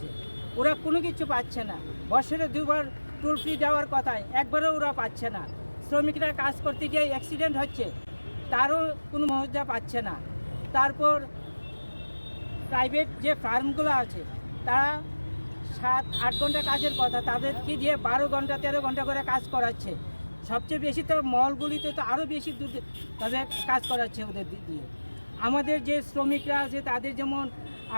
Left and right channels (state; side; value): inverted; both; correlation -1.00